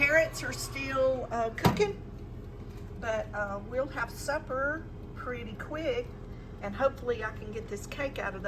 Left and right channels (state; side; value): identical; both; correlation 1.00